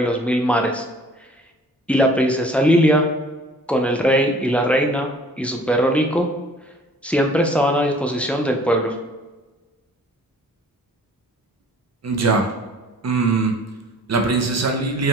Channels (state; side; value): normal; both; correlation 0.52